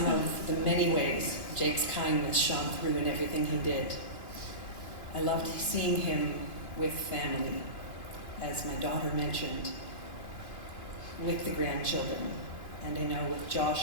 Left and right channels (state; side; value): late; right; 3.0 ms